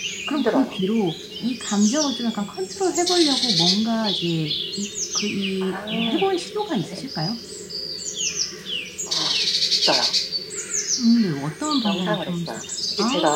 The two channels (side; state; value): both; identical; correlation 1.00